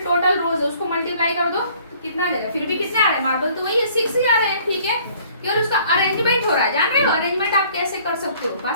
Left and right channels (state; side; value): inverted; both; correlation -0.57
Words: टोटल रोज है उसको मल्टीप्लाई कर दो, तो कितना आ जाएगा, फिर भी कितने आ रहे हैं मार्बल, तो वही 6 ही आ रहे हैं, ठीक है। केवल उसका अरेंजमेंट हो रहा है, जान रहे हो अरेंजमेंट आप कैसे कर सकते हो,